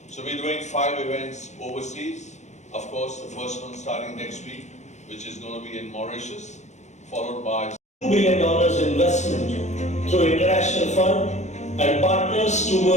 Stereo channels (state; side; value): late; right; 0.34 ms